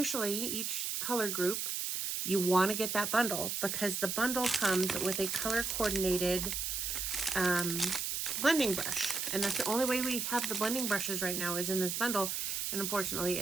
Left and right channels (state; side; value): noise; right; hiss, 1 dB below the sound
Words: each color group, you want to get that bundle because the bundle comes with a color coordinated blending brush. And that's the only way we have the blending brushes right now is in this bundle. And unfortunately,